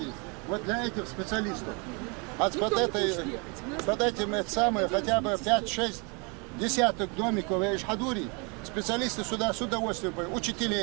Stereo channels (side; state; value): left; quieter; 32.3 dB